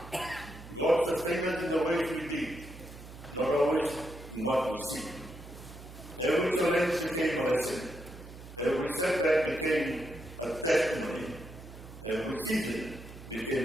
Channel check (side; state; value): right; noise; hum, 15 dB below the sound